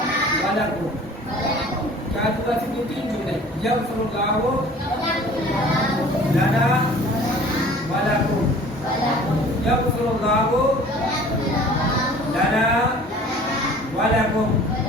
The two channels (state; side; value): normal; both; correlation 0.48